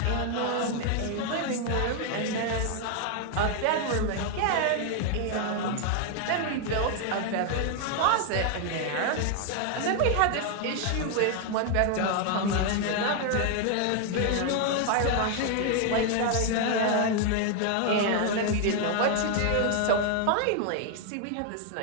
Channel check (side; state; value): both; different; correlation 0.00